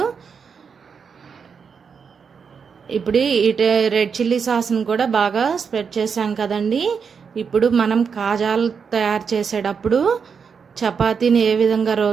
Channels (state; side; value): quieter; left; 6.2 dB